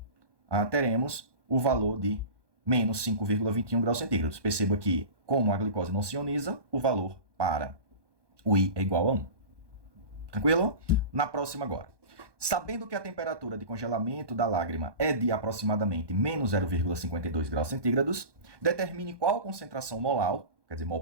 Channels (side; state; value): left; late; 1.2 ms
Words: teremos o valor de menos 5,21 graus centígrados. Perceba que, como a glicose não se ioniza, o valor para o I é igual a 1. Tranquilo? Na próxima agora. Sabendo que a temperatura de congelamento da lágrima é de aproximadamente menos 0,52 graus centígrados, determine qual concentração molar, quer dizer, mol